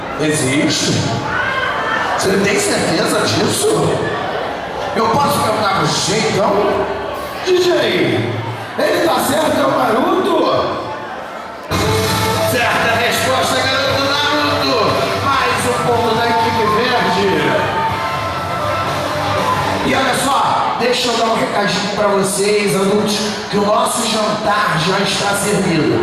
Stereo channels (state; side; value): identical; both; correlation 1.00